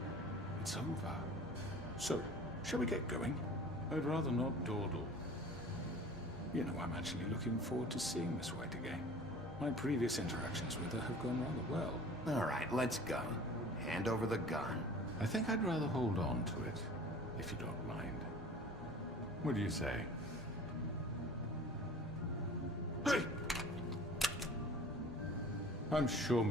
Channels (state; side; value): normal; both; correlation 0.43